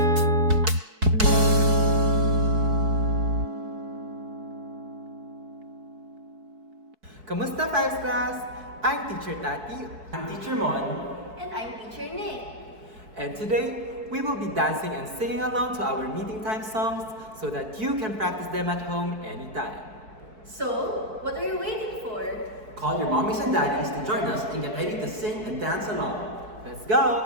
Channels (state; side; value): late; left; 4.6 ms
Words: Fives Class? I'm Teacher Tati. I'm Teacher Mon. And I'm Teacher Nick. And today, we will be dancing and singing along to our meeting time songs so that you can practice them at home anytime. So, what are you waiting for? Call your mommies and daddies to join us and get ready to sing and dance along. Let's